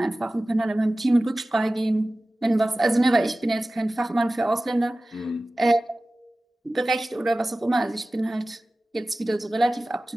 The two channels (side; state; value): both; normal; correlation 0.97